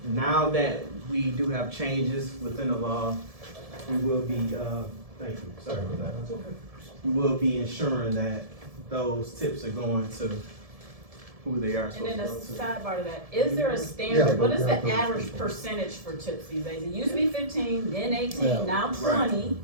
Now that we do have changes within the law, we will be, thank you, sorry about that. We will be ensuring that those tips are going to who they are. And then a sidebar to that, is there a standard, what is the average percentage for tips these days? It used to be 15, then 18, Yeah. now 20.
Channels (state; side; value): late; left; 1.7 ms